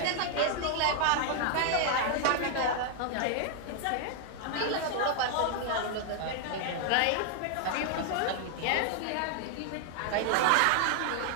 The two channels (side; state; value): both; different; correlation 0.00